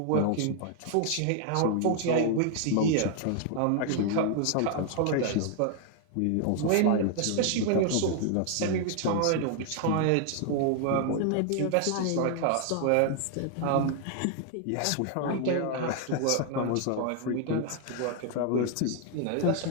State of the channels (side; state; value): both; different; correlation 0.00